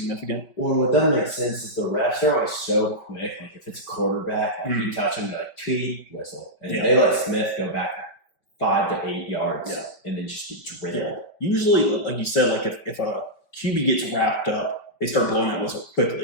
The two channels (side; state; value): right; late; 5.3 ms